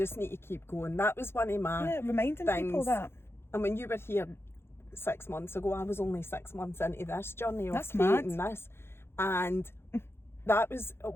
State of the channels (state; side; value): late; right; 0.12 ms